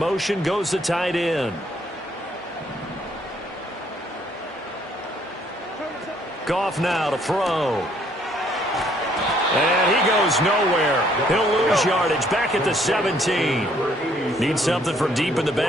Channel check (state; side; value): normal; both; correlation 0.65